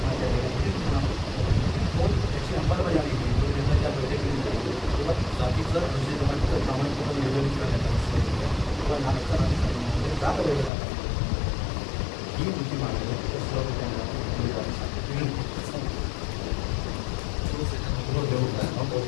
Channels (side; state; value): right; drops out; at 10.7 s